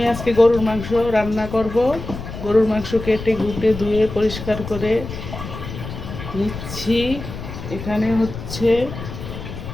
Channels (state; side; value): noise; left; rumble, 9 dB below the sound